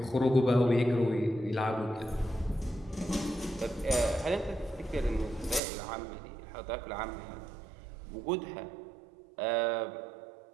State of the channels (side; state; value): left; drops out; at 5.6 s